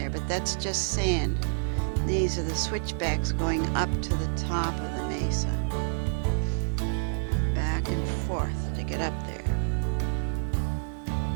but that's just sand. These are the switchbacks going up to the top of the mesa. Back and forth to get up there.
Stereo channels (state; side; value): silent; left; digital silence